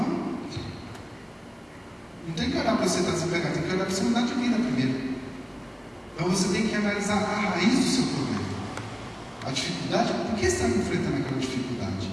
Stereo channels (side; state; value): both; identical; correlation 1.00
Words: não tem que olhar para você estar desempregado, tem que olhar para você mudar de vida primeiro. Então você tem que analisar a raiz do seu problema. A dificuldade, por que você está enfrentando aquela dificuldade?